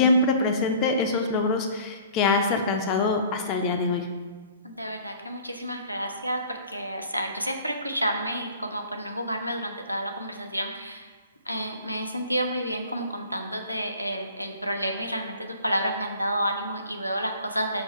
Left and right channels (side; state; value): both; inverted; correlation -0.49